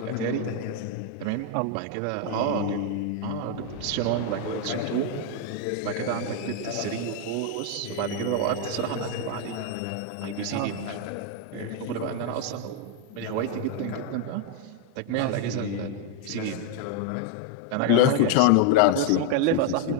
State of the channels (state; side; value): different; both; correlation 0.01